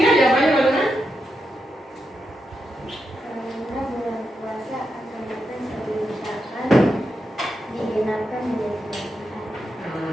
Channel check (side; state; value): both; normal; correlation 0.86